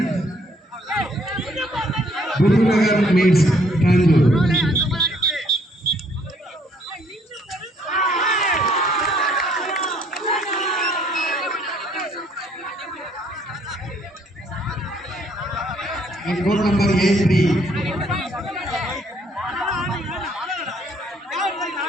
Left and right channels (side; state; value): both; normal; correlation 0.65